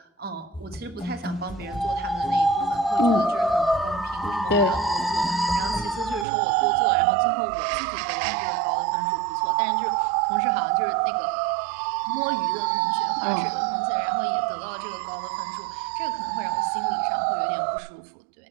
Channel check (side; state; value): left; drops out; at 6.2 s